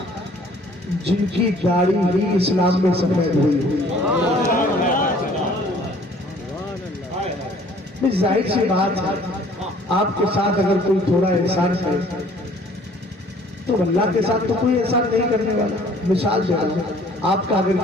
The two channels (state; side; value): normal; both; correlation 0.56